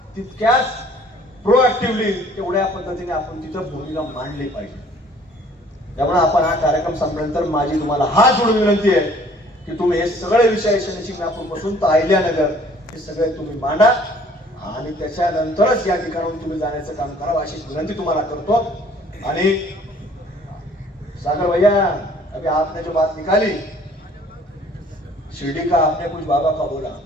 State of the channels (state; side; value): normal; both; correlation 0.56